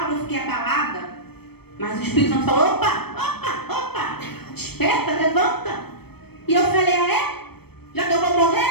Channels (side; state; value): right; late; 0.97 ms